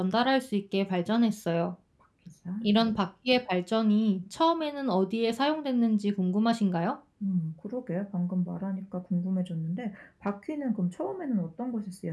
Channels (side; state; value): both; identical; correlation 1.00